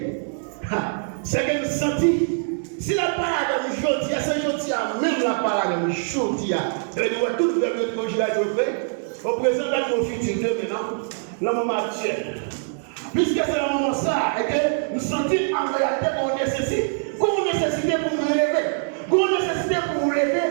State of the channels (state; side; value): silent; left; 63 dB below the other